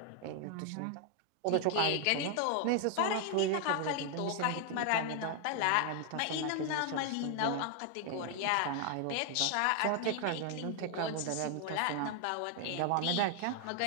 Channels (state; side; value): different; both; correlation 0.00